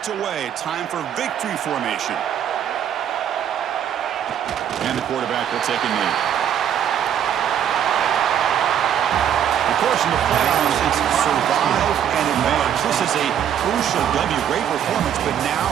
away. Time for victory formation. And the quarterback will take a knee. Of course, in the playoffs, it's survive and advance. This is a crucial W. Great performance, but now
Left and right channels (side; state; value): left; quieter; 9.4 dB